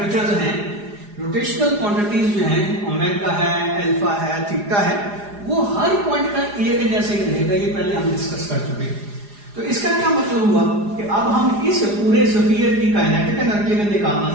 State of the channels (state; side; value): late; left; 4.9 ms